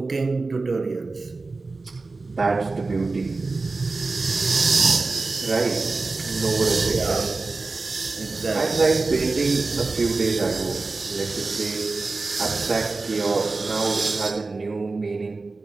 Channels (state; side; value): quieter; left; 3.7 dB